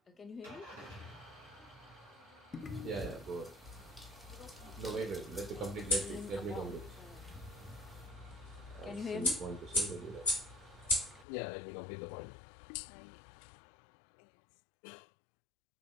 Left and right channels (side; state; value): right; drops out; at 11.2 s